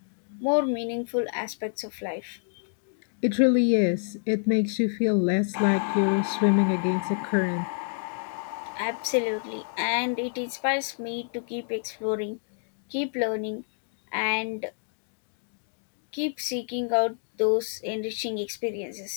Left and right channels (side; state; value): right; silent; digital silence